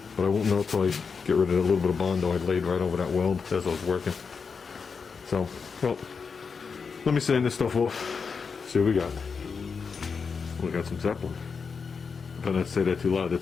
but I won't know until I get rid of that little bit of Bondo I laid right over that weld as I was working. So, well, let me sand this stuff off. See what we got. We got some Zeppelin. If I don't say that too loud,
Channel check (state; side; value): quieter; right; 5.5 dB